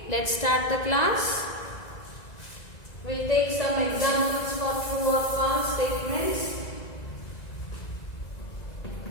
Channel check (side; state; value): right; late; 1.9 ms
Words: let's start the class. We'll take some examples for true or false statements.